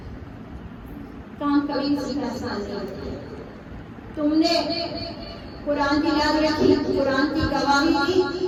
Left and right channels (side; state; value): both; identical; correlation 1.00